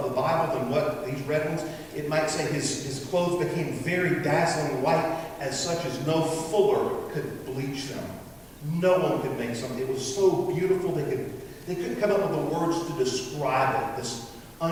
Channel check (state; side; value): identical; both; correlation 1.00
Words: the Bible than what these red ones, it might say his clothes became very dazzling white, as such as no fuller could bleach them. No one could make something. It was so beautiful they couldn't come up with the words to describe it. This